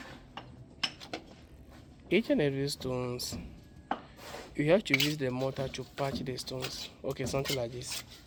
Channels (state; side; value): identical; both; correlation 1.00